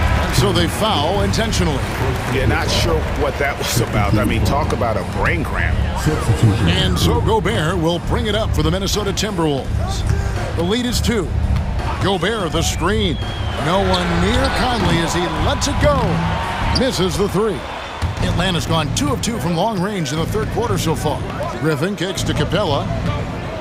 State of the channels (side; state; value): both; identical; correlation 1.00